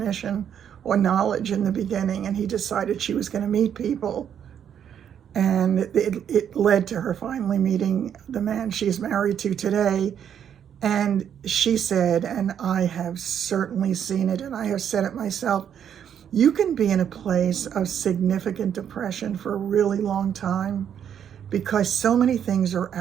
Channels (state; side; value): quieter; left; 8.9 dB